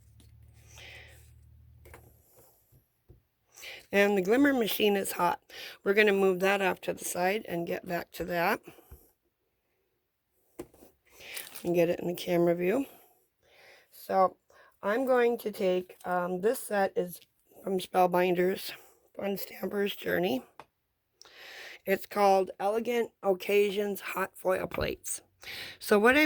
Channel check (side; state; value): both; identical; correlation 1.00